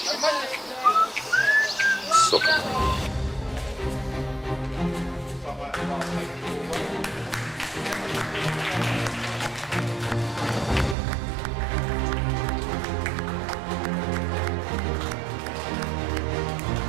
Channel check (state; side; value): drops out; left; at 11.0 s